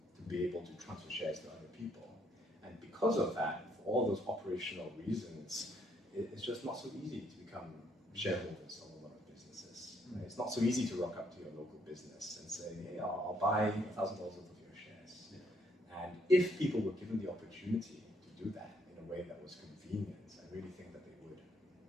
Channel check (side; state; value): both; normal; correlation 0.70